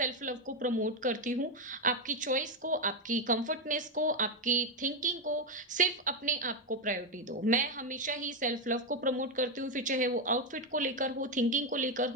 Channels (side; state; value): both; normal; correlation 0.06